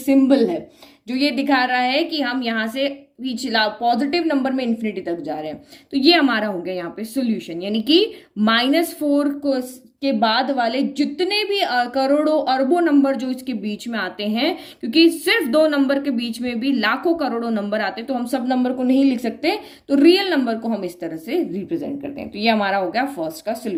है जो ये दिखा रहा है कि हम यहाँ से पिछला पॉजिटिव नंबर में इन्फिनिटी तक जा रहे हैं। तो ये हमारा हो गया यहाँ पे सोल्यूशन, यानी कि -4 को के बाद वाले जितने भी करोड़ों अरबों नंबर जो इसके बीच में आते हैं, क्योंकि सिर्फ 2 नंबर के बीच में भी लाखों करोड़ों नंबर आते हैं, तो हम सब नंबर को नहीं लिख सकते, तो रियल नंबर को हम इस तरह से रिप्रेजेंट करते हैं। तो ये हमारा हो गया फर्स्ट का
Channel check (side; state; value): both; identical; correlation 1.00